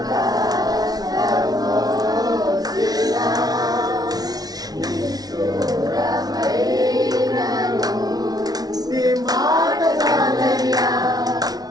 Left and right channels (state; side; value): late; left; 0.19 ms